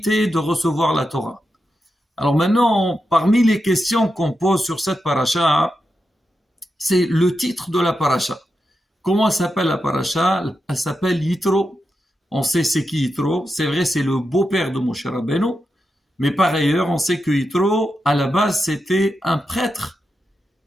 de recevoir la Torah. Alors maintenant, parmi les questions qu'on pose sur cette paracha, c'est le titre de la paracha. Comment s'appelle la paracha? Elle s'appelle Yitro. On sait c'est qui Yitro. C'est vrai, c'est le beau-père de Moshe Rabbeinu. Mais par ailleurs, on sait que Yitro, à la base, c'était un prêtre.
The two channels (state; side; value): normal; both; correlation 0.88